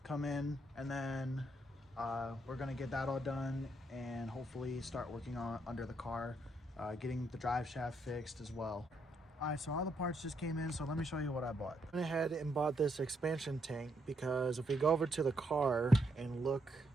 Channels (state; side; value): normal; both; correlation 0.76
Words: come in, and then we're gonna get that all done and hopefully start working on under the car, getting the drive shaft fixed as well. All right, so all the parts just came in, so let me show you what I bought. I went ahead and bought this expansion tank because if we go over to the car and look